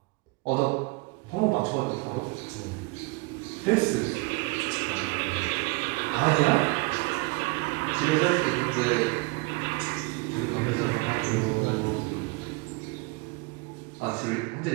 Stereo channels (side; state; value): left; quieter; 26.0 dB